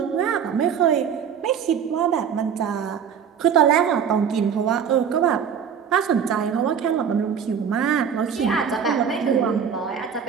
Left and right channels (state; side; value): quieter; left; 7.5 dB